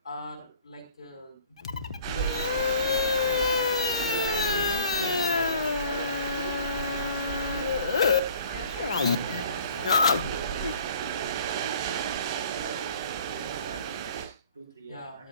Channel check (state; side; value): inverted; both; correlation -0.51